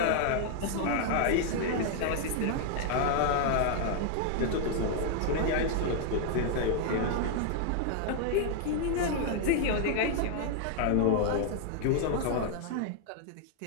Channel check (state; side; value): different; both; correlation 0.00